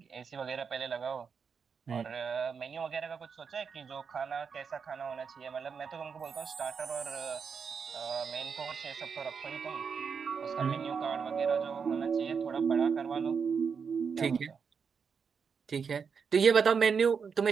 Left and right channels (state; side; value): quieter; left; 6.1 dB